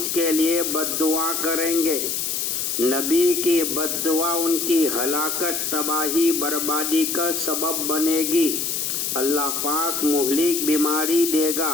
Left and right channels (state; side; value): noise; left; hiss, 1 dB below the sound